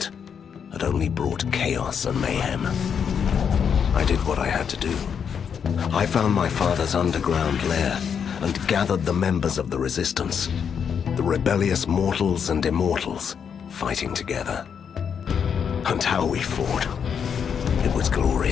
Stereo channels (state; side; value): quieter; right; 7.3 dB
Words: had only brought chaos and mayhem. I did what I had to do. I found my father's underground lair and gathered the members of the Resistance, the rebellious mortals and immortals, fighting together. And how we fought. It was